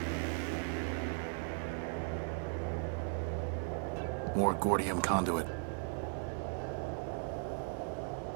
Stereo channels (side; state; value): left; silent; 53 dB below the other